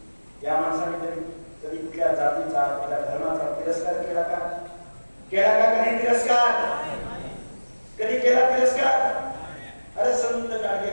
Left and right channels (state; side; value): inverted; both; correlation -1.00